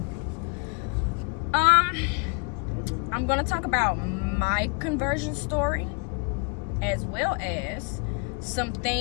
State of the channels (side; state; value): right; quieter; 34.8 dB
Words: I'm going to talk about my conversion story, as well as some